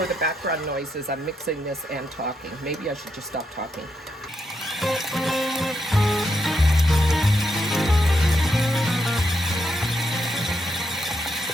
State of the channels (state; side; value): normal; both; correlation 0.81